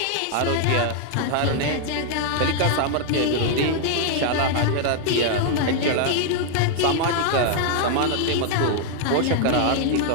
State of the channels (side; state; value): both; different; correlation 0.00